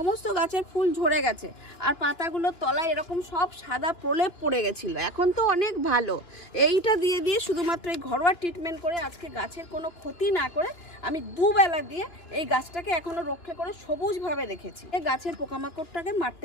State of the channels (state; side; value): late; right; 2.9 ms